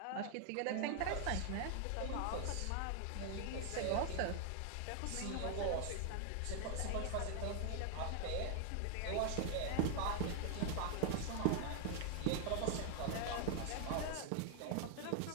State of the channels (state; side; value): different; both; correlation 0.00